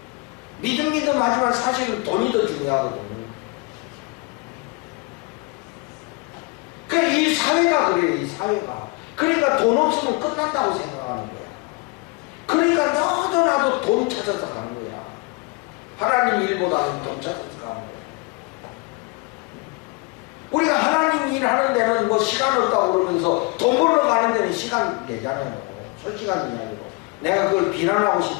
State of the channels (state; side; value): quieter; right; 27.6 dB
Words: 믿음 하지만 사실은 돈이 더 중요하거든. 그러니까 이 사회가 그래요, 이 사회가. 그러니까 돈 없으면 끝난다고 생각하는 거야. 그러니까 너도 나도 돈 찾아서 가는 거야. 하나님 일보다는 돈 찾아서 가는 거야. 우리가 하나님 일하는 데는 뭐 시간 없다고 그러면서 돈 벌러 가는 데는 시간 내잖아요. 솔직한 이야기로. 내가 그걸 비난하고